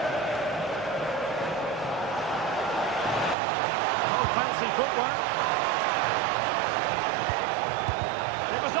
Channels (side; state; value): left; drops out; at 3.4 s